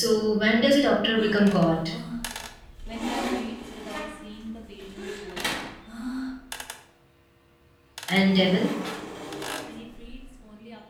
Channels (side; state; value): both; identical; correlation 1.00